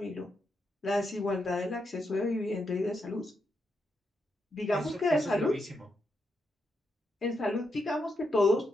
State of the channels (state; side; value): normal; both; correlation 0.83